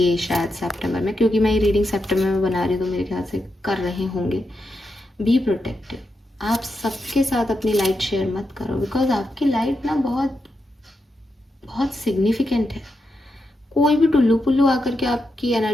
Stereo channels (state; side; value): normal; both; correlation 0.86